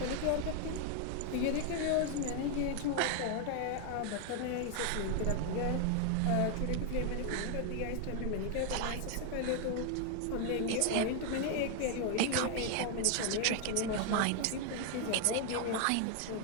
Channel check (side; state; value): both; different; correlation 0.00